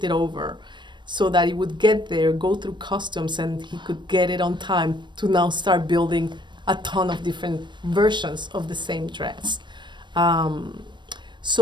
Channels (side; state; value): left; late; 0.22 ms